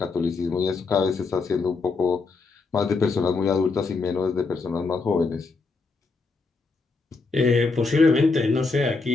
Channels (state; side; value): quieter; right; 4.1 dB